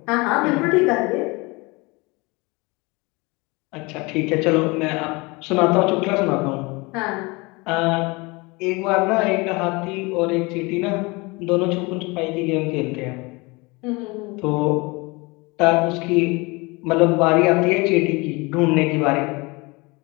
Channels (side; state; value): right; quieter; 25.7 dB